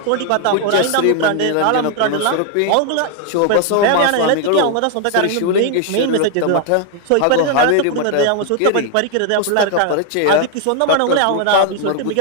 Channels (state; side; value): different; both; correlation 0.00